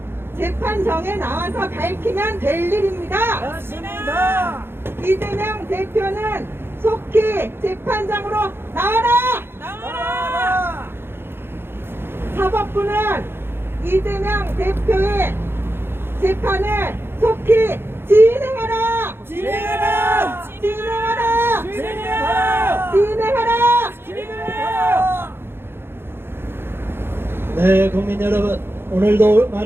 재판정에 나와서 밝히면 될 일입니다. 맞습니다. 이재명 대표는 속히 재판장으로 나와라! 나와라. 사법부는 이재명 대표의 재판을 속히 진행하라! 진행하라. 진행하라! 진행하라. 진행하라! 진행하라. 네, 국민 여러분, 오늘도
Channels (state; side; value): late; left; 0.11 ms